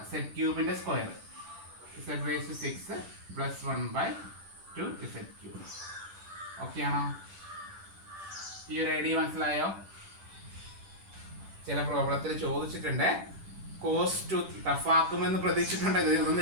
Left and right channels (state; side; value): late; left; 10 ms